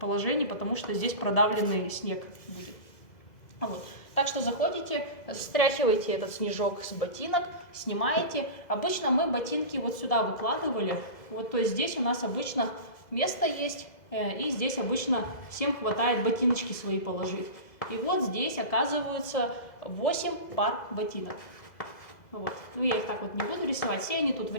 потому что здесь продавленный снег будет. Вот. Так что заходите, стряхиваете этот снежок с ботинок, снимаете. Обычно мы ботинки вот сюда выкладывали. Вот, то есть здесь у нас обычно место есть, и здесь обычно всем хватает ботиночки свои положить. И вот здесь оказывается 8 пар ботинок. Вот. Ну, я их так вот не буду рисовать, все они тут в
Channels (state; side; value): late; right; 2.0 ms